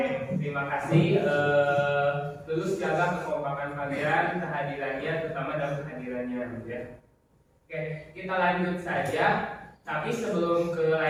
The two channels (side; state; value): both; identical; correlation 1.00